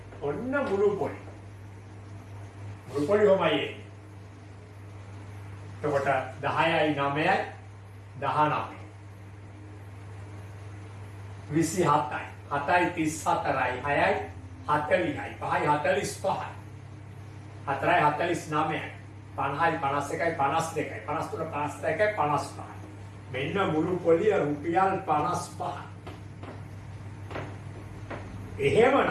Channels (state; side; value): identical; both; correlation 1.00